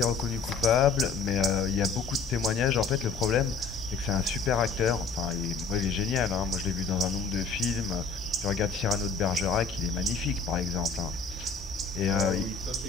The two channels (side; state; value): right; quieter; 4.9 dB